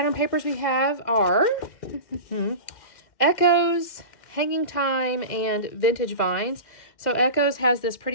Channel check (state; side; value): late; right; 2.1 ms